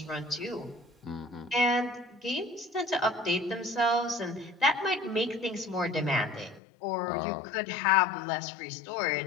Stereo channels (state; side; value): drops out; right; at 6.6 s